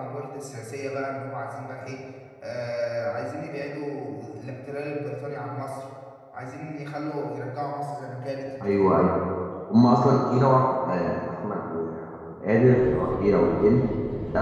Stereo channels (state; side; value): identical; both; correlation 1.00